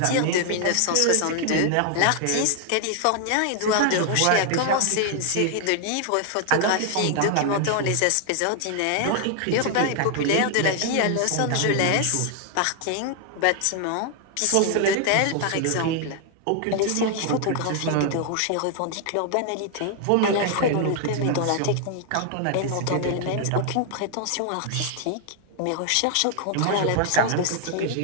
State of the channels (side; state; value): both; different; correlation 0.00